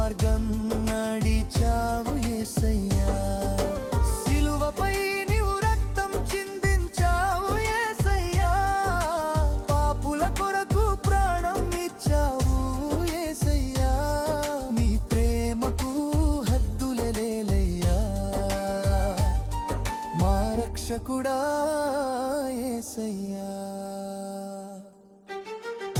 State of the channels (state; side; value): identical; both; correlation 1.00